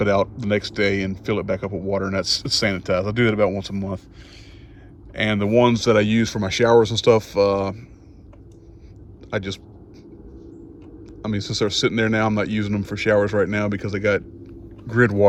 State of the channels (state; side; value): identical; both; correlation 1.00